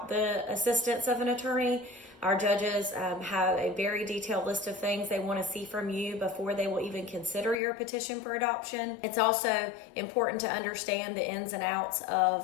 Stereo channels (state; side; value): drops out; right; at 7.6 s